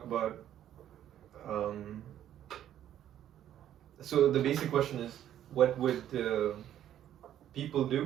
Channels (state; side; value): quieter; left; 11.2 dB